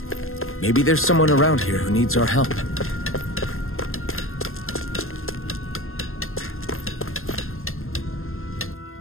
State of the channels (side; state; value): right; late; 0.61 ms